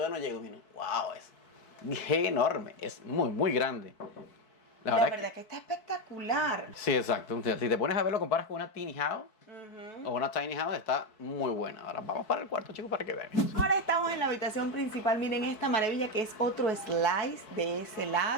no llego. Miren, wow, es enorme. Es muy, muy grande. La verdad que está espectacular. Sí, exacto. O sea, si te pones a ver, lo comparas con una tiny house o una tiny house, está muy buena. Ahora vamos para el cuarto, chicos, para que vean. Ahora estamos en la habitación principal. Miren esta maravilla que es otro slice de ese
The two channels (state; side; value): late; right; 4.6 ms